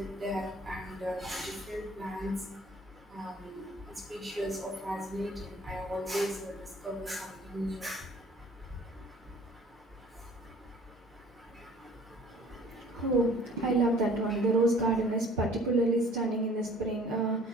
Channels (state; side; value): normal; both; correlation 0.52